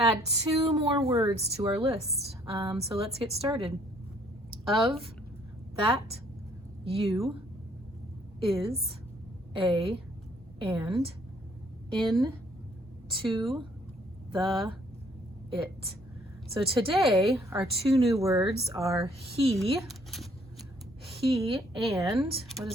2 more words to our list. So let's get started. Of, that, you, is, a, and, in, to, the, it. So today our 2 new words are he, and, what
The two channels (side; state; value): both; normal; correlation 0.63